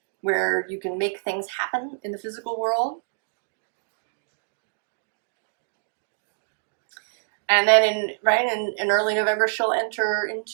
where you can make things happen in the physical world. And then in early November, she'll enter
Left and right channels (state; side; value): silent; left; digital silence